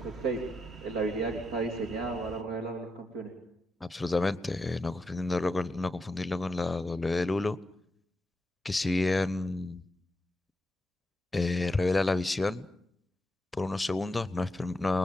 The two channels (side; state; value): both; normal; correlation 0.86